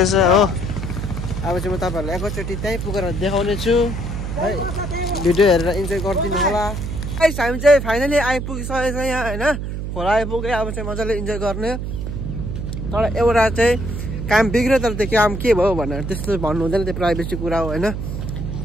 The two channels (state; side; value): noise; right; hum, 5 dB below the sound